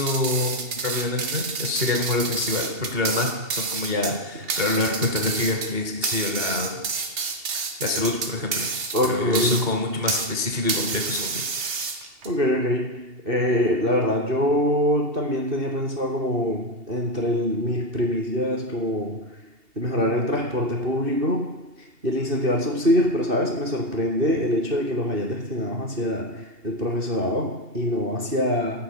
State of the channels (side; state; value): left; late; 2.8 ms